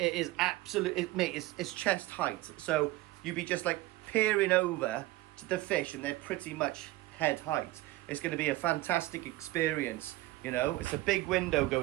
is it's chest height, so you'd be just like peering over to the fish and they're pretty much head height. It's going to be a fantastic experience, you know. It's a big window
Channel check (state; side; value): quieter; left; 18.1 dB